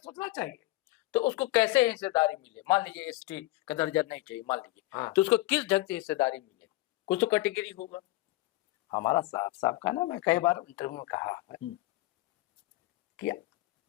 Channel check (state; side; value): quieter; right; 18.5 dB